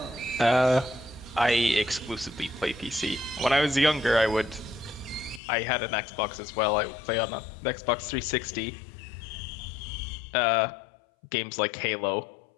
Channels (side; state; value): right; drops out; at 5.4 s